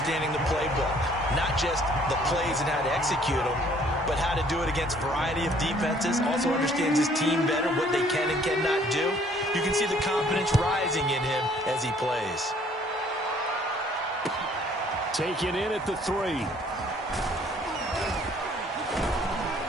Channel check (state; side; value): normal; both; correlation 0.60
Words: the playbook. Not just the plays and how to execute them, but how to do it against a variety of defenses. Also understands his team better, what they can and cannot do. You can see the confidence rising in him as he plays. Taken in at the 3.